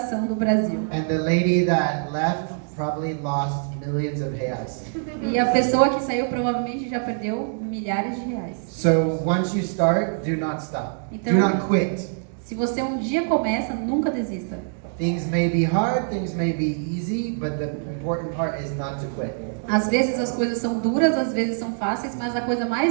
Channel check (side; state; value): left; silent; digital silence